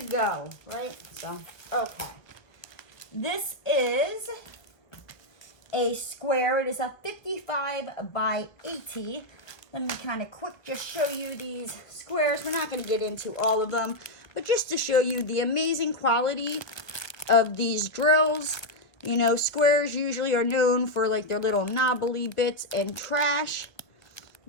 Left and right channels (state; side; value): late; right; 1.5 ms